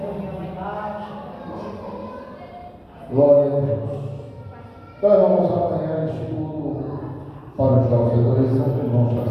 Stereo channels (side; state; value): both; identical; correlation 1.00